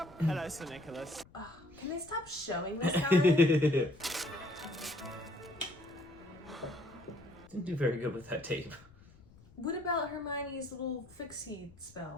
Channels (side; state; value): left; noise; rumble, 24 dB below the sound